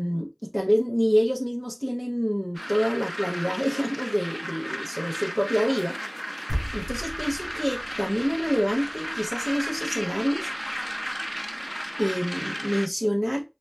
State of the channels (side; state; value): both; identical; correlation 1.00